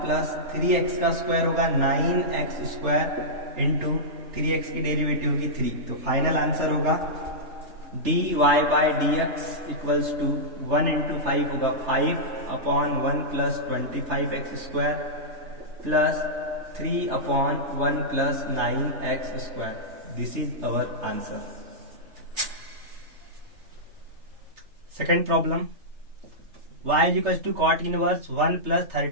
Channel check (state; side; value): late; left; 3.3 ms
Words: प्लस 3x का square होगा 9x स्क्वायर इंटू 3x की डेरिवेटिव होगी 3। तो फाइनल आंसर होगा dy by dx equals to 1 into 5 होगा 5 upon 1 plus 25x square plus 3 upon 1 plus 9x square. This is our answer. Second problem, y is equal to cot inverse 1 plus